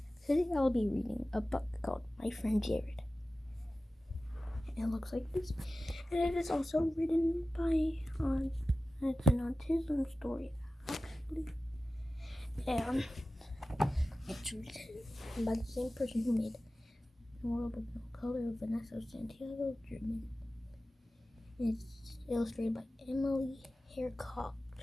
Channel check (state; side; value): normal; both; correlation 0.95